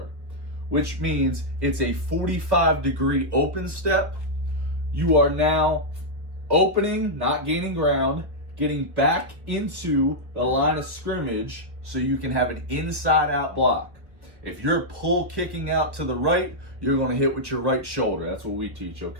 which means it's a 45-degree open step. You are now opening, not gaining ground, getting back into the line of scrimmage so you can have an inside out block. If you're pull kicking out to the right, you're going to hit with your right shoulder. That's what we teach,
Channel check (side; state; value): left; late; 1.1 ms